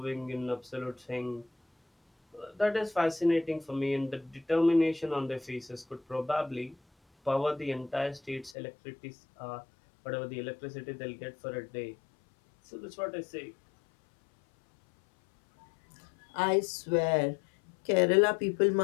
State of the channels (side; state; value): right; drops out; at 8.6 s